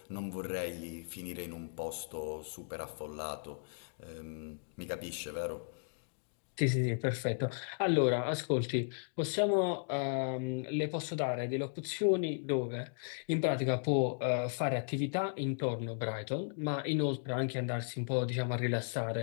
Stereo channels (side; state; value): right; silent; digital silence